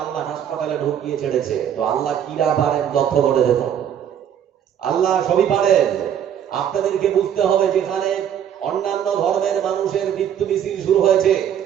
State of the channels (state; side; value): quieter; left; 9.4 dB